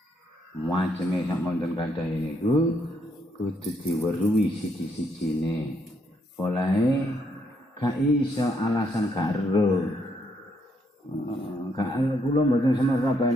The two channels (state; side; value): normal; both; correlation 0.74